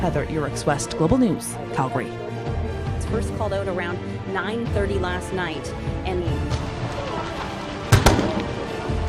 Heather Urix West, Global News, Calgary. It's first called out around 9:30 last night, and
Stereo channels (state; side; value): identical; both; correlation 1.00